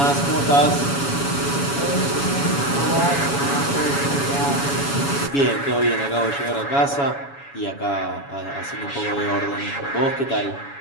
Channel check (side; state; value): right; late; 7.1 ms